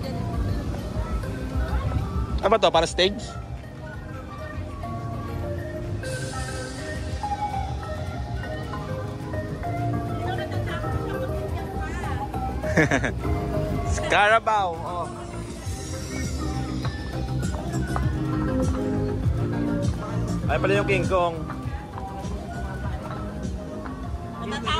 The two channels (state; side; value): identical; both; correlation 1.00